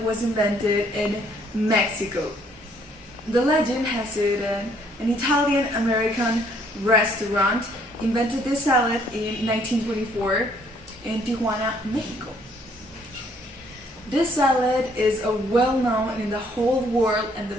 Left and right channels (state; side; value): normal; both; correlation 0.64